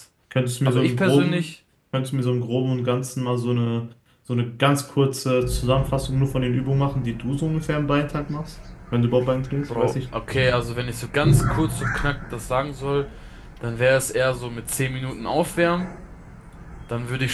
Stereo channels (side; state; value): both; identical; correlation 1.00